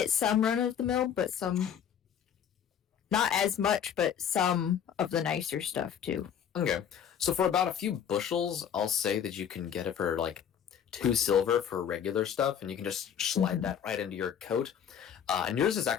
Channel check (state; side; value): quieter; right; 8.6 dB